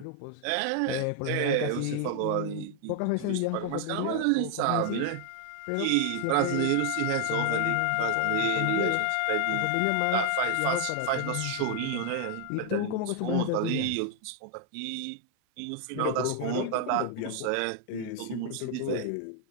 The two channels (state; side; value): different; both; correlation 0.00